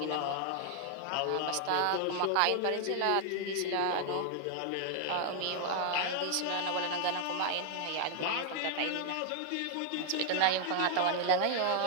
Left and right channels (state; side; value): different; both; correlation 0.00